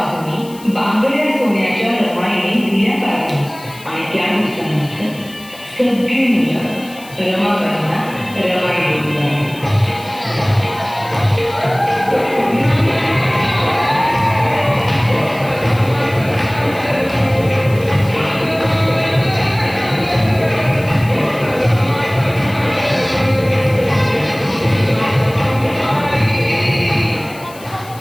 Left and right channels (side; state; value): left; noise; hiss, 20 dB below the sound